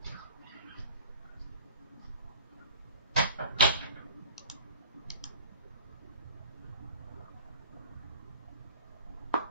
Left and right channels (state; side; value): inverted; both; correlation -0.44